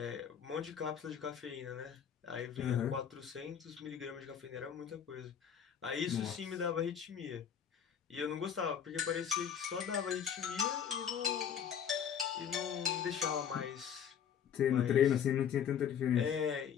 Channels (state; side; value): quieter; right; 8.2 dB